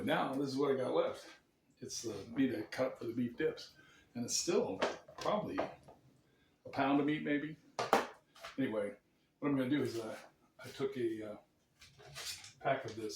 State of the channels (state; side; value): identical; both; correlation 1.00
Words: now this is what I got left. It's the meat I cut for the beef dips. And it's still probably a pound of meat maybe. Anyway, what I'm going to do is I took a pack of